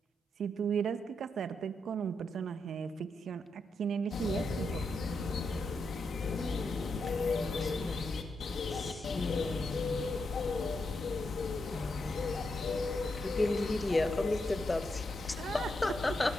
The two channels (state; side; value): normal; both; correlation 0.83